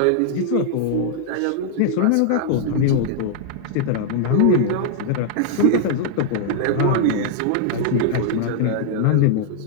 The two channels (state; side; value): different; both; correlation -0.01